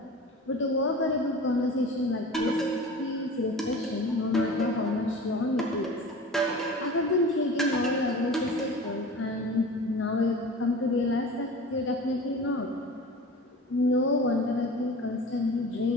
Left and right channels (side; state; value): both; normal; correlation 0.37